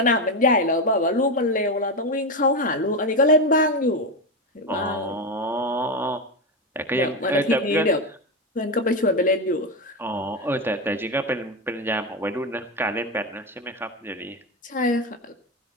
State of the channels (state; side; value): normal; both; correlation 0.13